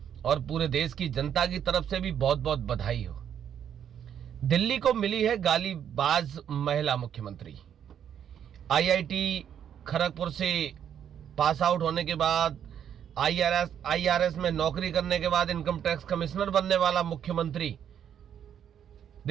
और पूरे देश की जनता की तरफ से भी बहुत बहुत बधाई हो। दिल्ली को मिली है गालीबाज महिला मुख्यमंत्री। आईआईटी खड़गपुर से पास आउट होने के बाद आईआरएस में नौकरी करने के बाद इनकम टैक्स कमिश्नर बनने वाला मुख्यमंत्री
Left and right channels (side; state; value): left; quieter; 9.1 dB